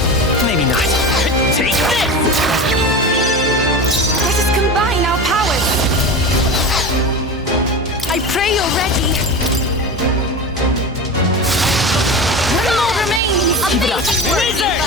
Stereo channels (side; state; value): both; normal; correlation 0.27